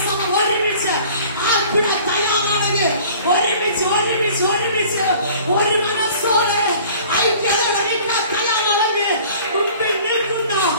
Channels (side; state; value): both; inverted; correlation -0.49